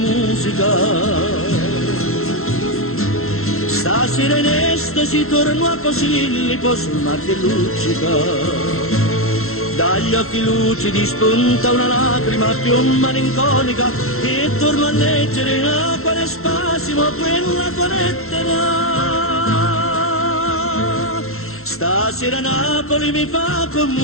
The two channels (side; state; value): right; late; 0.62 ms